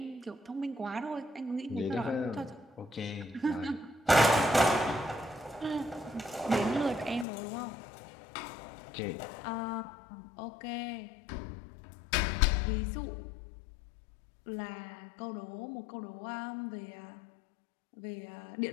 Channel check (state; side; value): drops out; right; at 7.2 s